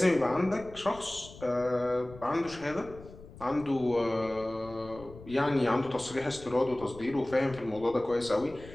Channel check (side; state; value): left; noise; rumble, 18 dB below the sound